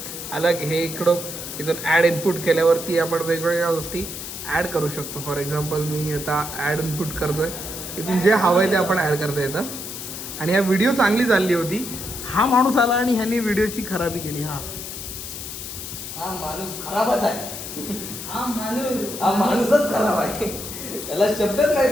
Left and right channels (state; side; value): noise; left; hiss, 8 dB below the sound